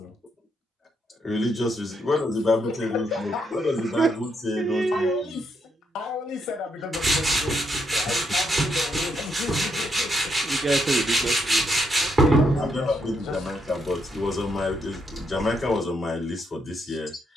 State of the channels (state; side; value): normal; both; correlation 0.77